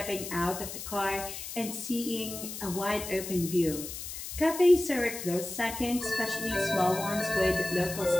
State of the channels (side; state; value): left; noise; hiss, 8 dB below the sound